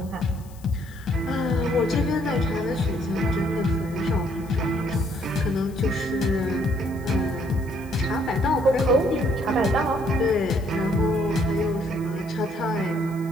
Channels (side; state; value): left; noise; hiss, 25 dB below the sound